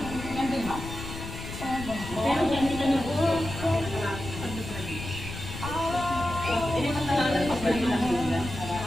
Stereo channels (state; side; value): noise; left; rumble, 9 dB below the sound